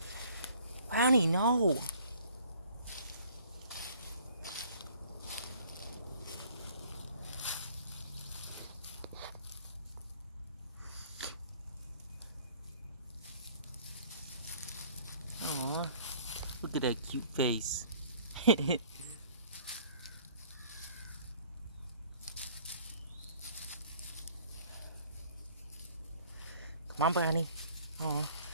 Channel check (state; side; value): inverted; both; correlation -0.54